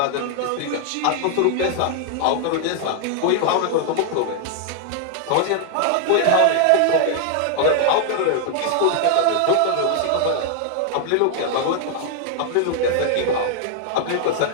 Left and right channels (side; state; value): both; different; correlation 0.00